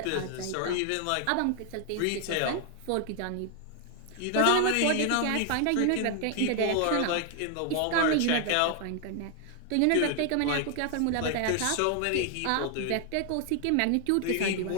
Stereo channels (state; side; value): different; both; correlation 0.00